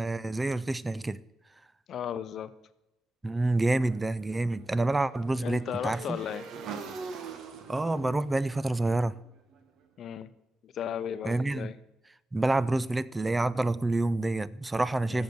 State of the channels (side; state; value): both; normal; correlation 0.94